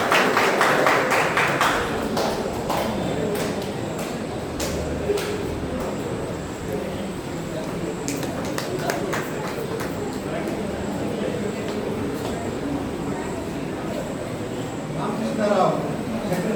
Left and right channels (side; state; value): both; identical; correlation 1.00